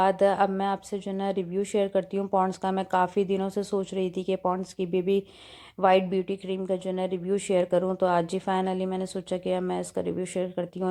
अब मैं आपसे जो है ना रिव्यू शेयर करती हूँ पॉन्ड्स का। मैं काफ़ी दिनों से सोच रही थी कि पॉन्ड्स की बेबी वाइट ब्यूटी क्रीम का जो है ना रिव्यू शेयर करूँ, तो आज जी फाइनली मैंने सोचा कि अब मैं इसका रिव्यू शेयर करती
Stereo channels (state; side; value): identical; both; correlation 1.00